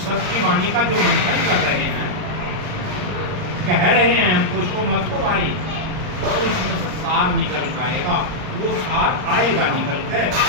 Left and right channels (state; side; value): late; left; 38 ms